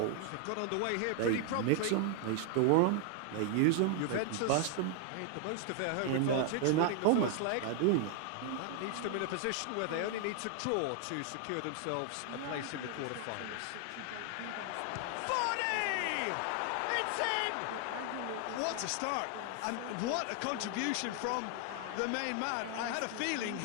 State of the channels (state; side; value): different; both; correlation 0.00